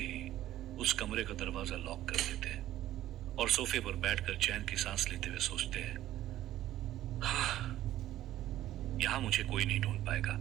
उस कमरे का दरवाजा लॉक कर देते हैं और सोफे पर बैठकर चैन की सांस लेते हुए सोचते हैं, यहां मुझे कोई नहीं ढूंढ पाएगा।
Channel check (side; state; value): left; quieter; 13.7 dB